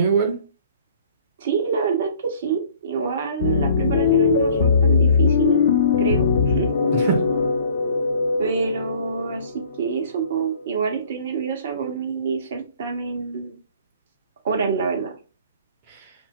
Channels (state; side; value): inverted; both; correlation -0.53